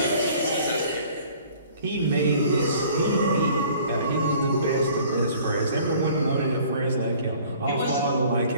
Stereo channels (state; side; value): inverted; both; correlation -0.52